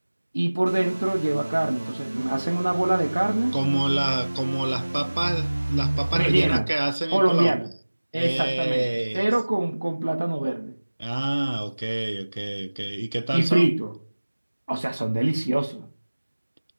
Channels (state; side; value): inverted; both; correlation -1.00